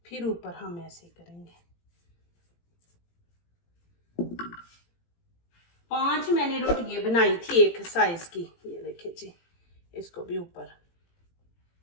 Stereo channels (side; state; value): right; late; 18 ms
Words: फिर ऊपर हम ऐसे करेंगे। 5 मैंने रोटियां बनाई थी एक साइज की। ये देखिए जी, इसको भी ऊपर।